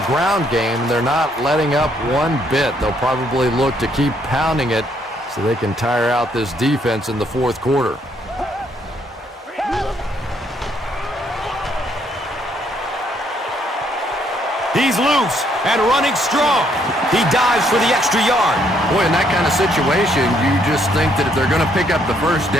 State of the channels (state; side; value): normal; both; correlation 0.70